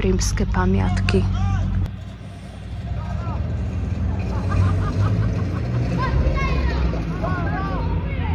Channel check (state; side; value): identical; both; correlation 1.00